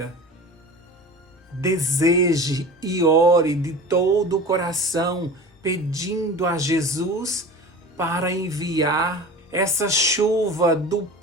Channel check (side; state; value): both; normal; correlation 0.35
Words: Deseje e ore de todo o coração, pedindo a Jesus para enviar essa chuva do